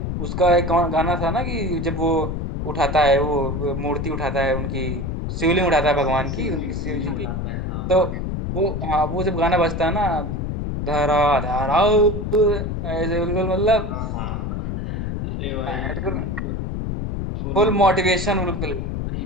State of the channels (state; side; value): noise; left; rumble, 3 dB below the sound